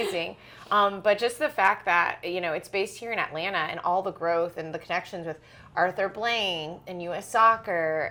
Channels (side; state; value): both; identical; correlation 1.00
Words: But just the fact that it's based here in Atlanta, and all the growth and the connections with Arthur Blank and U.S.